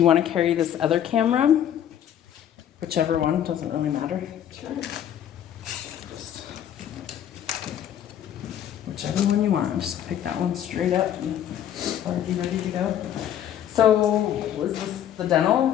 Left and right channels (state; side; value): quieter; right; 10.3 dB